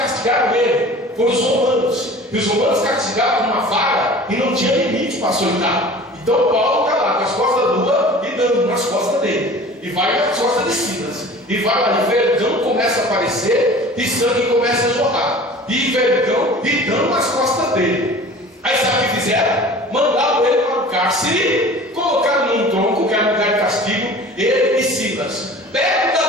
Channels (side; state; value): both; normal; correlation 0.42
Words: ele, foram os romanos. E os romanos castigavam com uma vara e não tinha limite para açoitar. Então Paulo está lá com as costas nuas e dando nas costas dele. E vai nas costas de Silas. E vai lá, e vergão começa a aparecer e sangue começa a jorrar. E vergão e dando nas costas dele. Aí sabe o que fizeram? Mandaram ele para o cárcere, colocaram num tronco, que era um lugar de castigo, ele e Silas. Perto